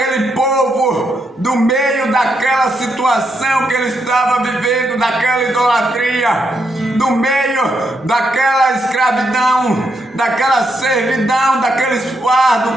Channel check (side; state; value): both; normal; correlation 0.80